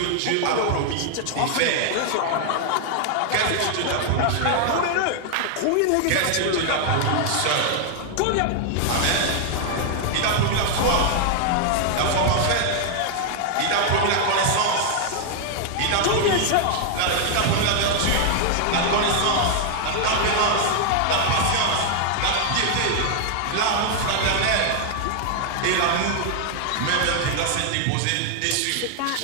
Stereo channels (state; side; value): different; both; correlation 0.00